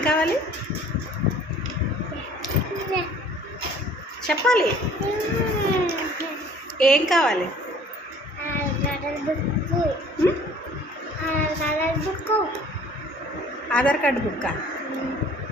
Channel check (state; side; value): normal; both; correlation 0.51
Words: కావాలి చెప్పాలి. ఏం కావాలి? ఆధార్ కార్డ్ బుక్కా?